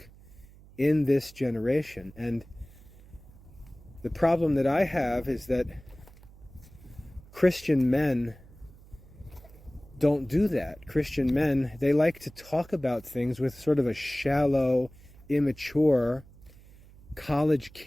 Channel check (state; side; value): noise; right; hum, 22 dB below the sound